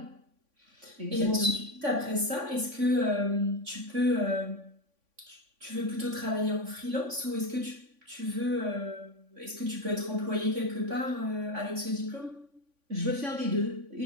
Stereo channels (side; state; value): left; late; 3.5 ms